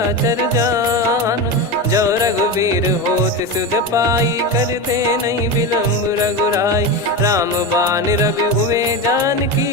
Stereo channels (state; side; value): normal; both; correlation 0.19